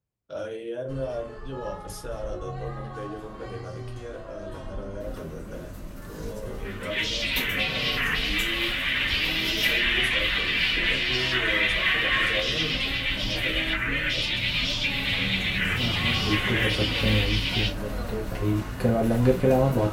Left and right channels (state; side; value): identical; both; correlation 1.00